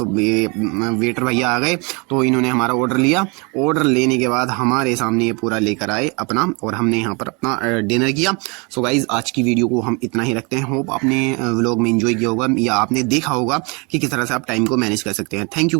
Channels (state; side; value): quieter; left; 30.5 dB